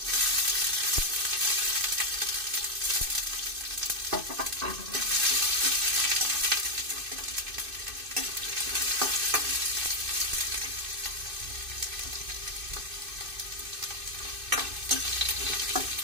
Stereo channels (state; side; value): late; left; 2.5 ms